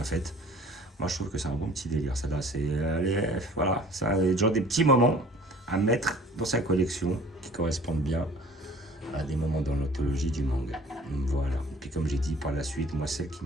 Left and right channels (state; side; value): normal; both; correlation 0.49